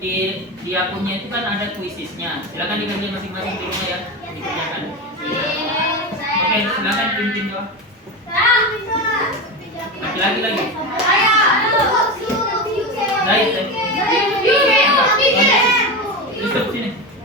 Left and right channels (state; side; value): normal; both; correlation 0.20